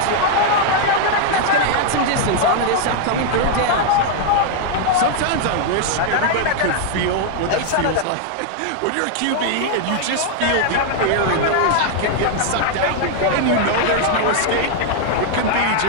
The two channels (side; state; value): both; different; correlation 0.00